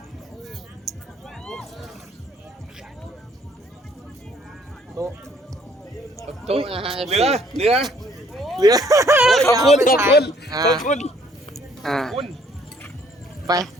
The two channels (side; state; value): both; normal; correlation 0.62